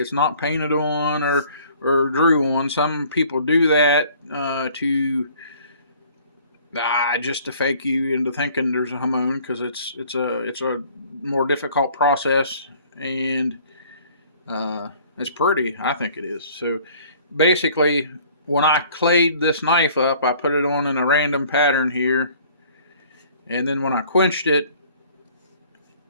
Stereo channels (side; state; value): both; inverted; correlation -0.54